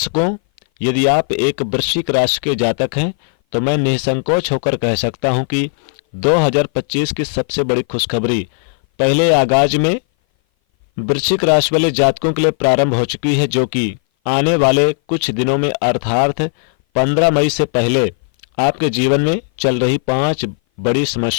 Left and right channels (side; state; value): right; silent; 59 dB below the other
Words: यदि आप एक वृश्चिक राशि के जातक हैं तो मैं निसंकोच होकर कह सकता हूं कि 2025 की सबसे बड़ी खुशखबरी पहले आगाज में वृश्चिक राशि वाले जातकों के लिए प्रारंभ हो चुकी है, जो कि आने वाले कुछ दिनों में अर्थात 15 मई से पहले आपके जीवन में चल रही 5 बड़ी